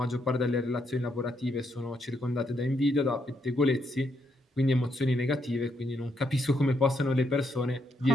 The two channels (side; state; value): both; normal; correlation 0.76